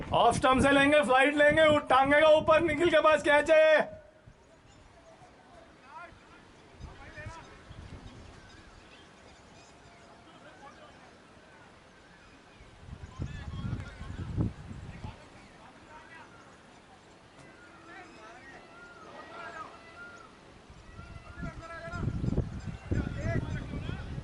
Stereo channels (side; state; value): both; identical; correlation 1.00